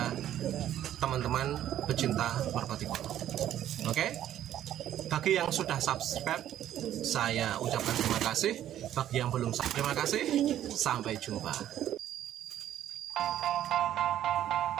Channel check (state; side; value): quieter; left; 11.7 dB